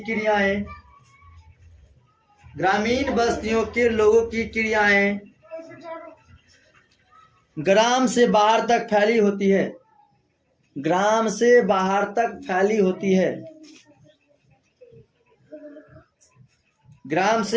क्रियाएं ग्राम से बाहर तक फैली होती है। ग्राम से बाहर तक फैली होती है। ग्राम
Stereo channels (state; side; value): identical; both; correlation 1.00